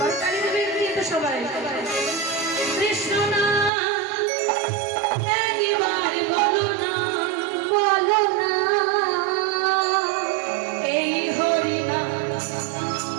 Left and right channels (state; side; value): drops out; left; at 3.7 s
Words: দেবের দিয়ে তো সবাই কৃষ্ণ নাম একবারে বলো না, বলো না। এই হরি নাম